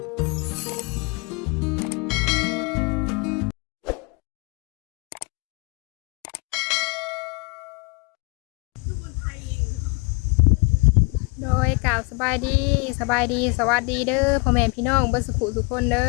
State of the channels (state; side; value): quieter; right; 30.1 dB